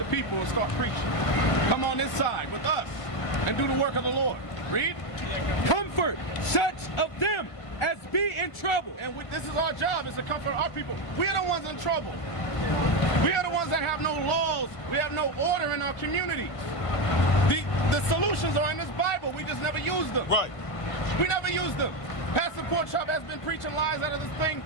people and start preaching. Come on this side with us and do the work of the Lord. Read. Comfort such of them as be in trouble. And this is our job, is to comfort our people. We are the ones in trouble. We are the ones that have no laws. We have no order in our communities. The solutions are in this Bible. We just never use them. Right. We never use them. Pastor Porkchop has been preaching lies out of this thing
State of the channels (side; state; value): right; late; 1.4 ms